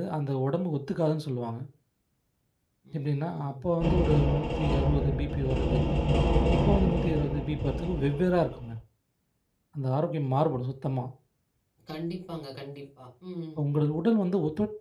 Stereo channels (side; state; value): both; identical; correlation 1.00